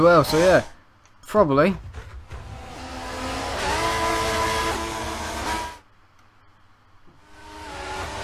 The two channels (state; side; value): identical; both; correlation 1.00